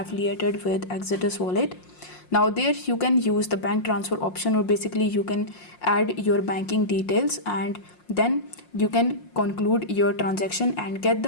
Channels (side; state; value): right; late; 5.6 ms